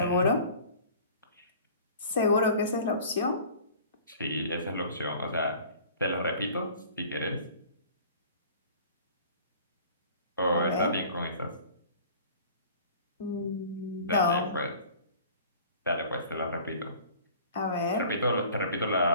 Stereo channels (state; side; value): inverted; both; correlation -0.46